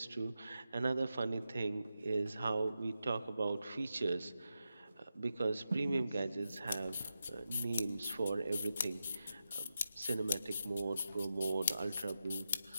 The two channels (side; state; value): both; inverted; correlation -0.89